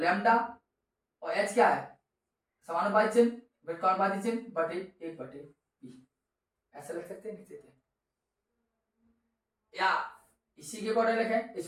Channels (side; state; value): both; identical; correlation 1.00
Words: और H क्या है, समानुपाती चिन्ह, व्युत्क्रमानुपाती चिन्ह बटे 1 बटे P, ऐसा लिख सकते हैं, लिख सकते हैं, या इसी के अकॉर्डिंग लिखें,